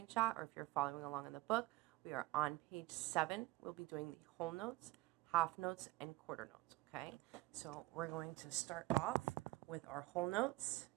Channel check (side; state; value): left; quieter; 19.8 dB